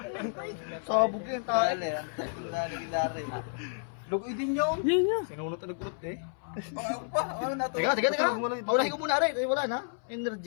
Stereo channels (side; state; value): right; silent; 57 dB below the other